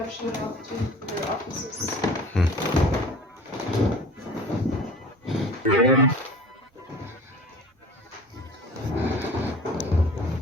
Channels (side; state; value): both; normal; correlation 0.43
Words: shown off to for their offices.